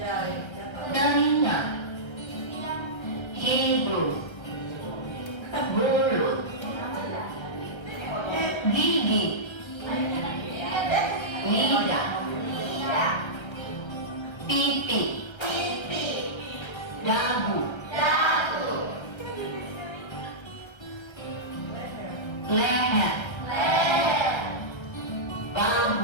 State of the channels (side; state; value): right; late; 1.3 ms